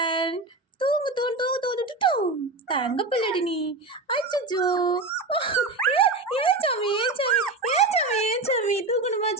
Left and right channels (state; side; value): quieter; left; 3.3 dB